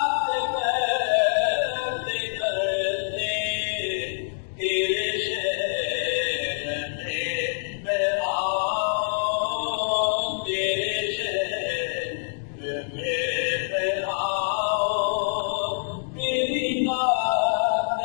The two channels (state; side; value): silent; right; digital silence